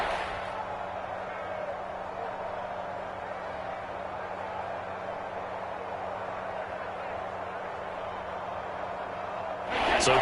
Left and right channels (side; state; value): both; identical; correlation 1.00